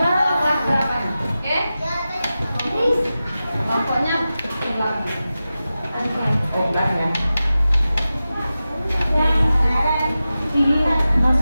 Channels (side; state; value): both; inverted; correlation -0.94